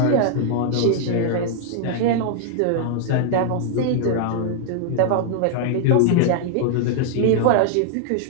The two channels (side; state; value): both; different; correlation -0.01